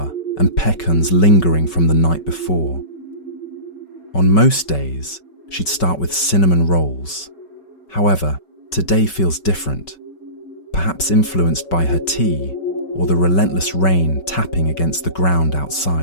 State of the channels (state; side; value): late; right; 5.3 ms